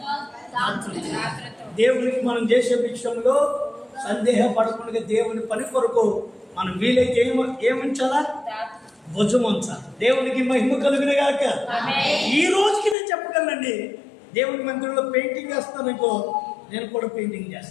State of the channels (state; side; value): drops out; right; at 13.0 s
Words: దేవునికి మనం చేసే విషయంలో సందేహపడకుండా దేవుని పని కొరకు మనం వీలైతే ఏముంచాలా? భుజం ఉంచాలి. దేవునికి మహిమ కలుగును గాక. ఈ రోజుకి నేను చెప్పగలనండి, దేవుని మందిరంలో పెయింటింగ్ చేస్తాను ఇంకో, నేను కూడా పెయింటింగ్